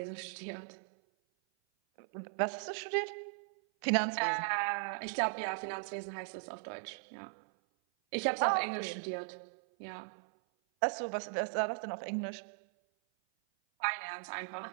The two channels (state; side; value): silent; left; 53 dB below the other